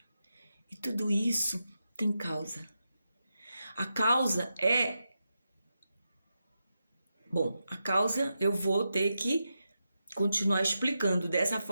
E tudo isso tem causa. A causa eu vou ter que continuar explicando dessa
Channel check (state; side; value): inverted; both; correlation -0.88